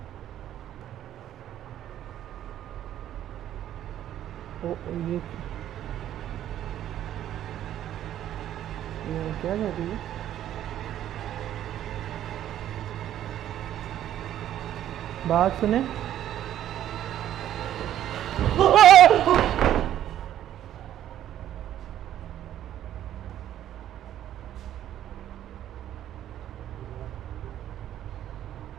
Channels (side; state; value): left; quieter; 11.6 dB